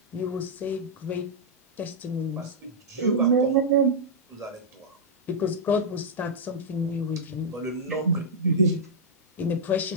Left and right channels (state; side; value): normal; both; correlation -0.08